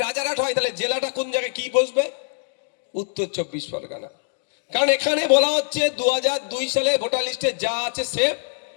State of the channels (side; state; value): right; silent; digital silence